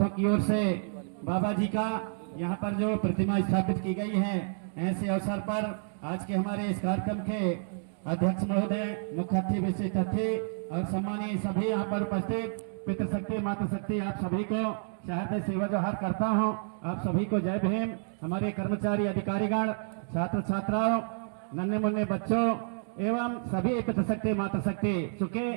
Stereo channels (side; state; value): left; silent; digital silence